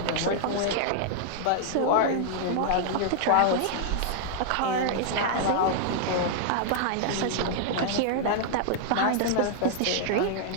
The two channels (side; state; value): both; different; correlation -0.01